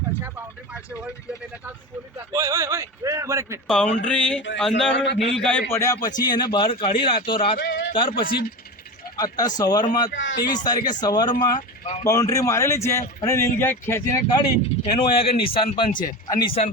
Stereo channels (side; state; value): both; normal; correlation 0.25